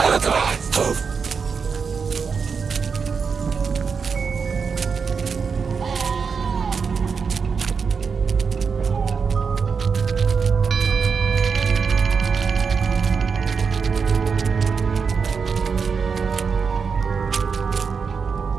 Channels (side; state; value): left; quieter; 5.6 dB